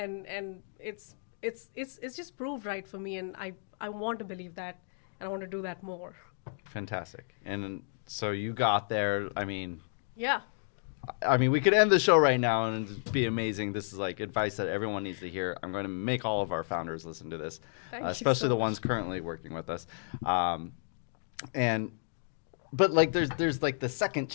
it's it's just proved right for me, and I want to believe that, and I want to do that more. Fantastic. And so you got there. Yeah. We could end the show right now and it'd be amazing. This is like advice that everyone needs to hear. I'm going to make all of our founders listen to this, especially the ones currently working with us. But like there's like the second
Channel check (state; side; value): silent; right; digital silence